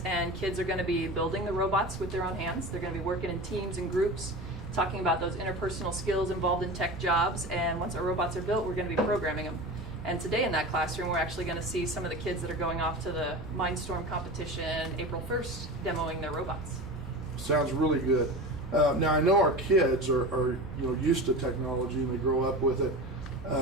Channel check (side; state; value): left; noise; hum, 25 dB below the sound